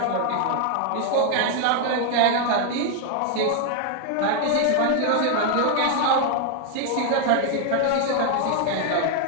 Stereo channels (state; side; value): different; both; correlation 0.00